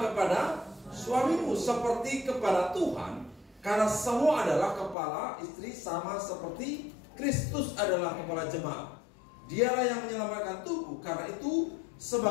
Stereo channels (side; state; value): right; drops out; at 5.0 s